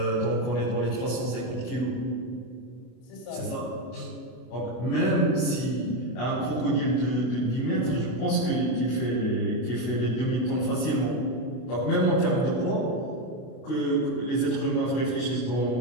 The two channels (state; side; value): late; right; 33 ms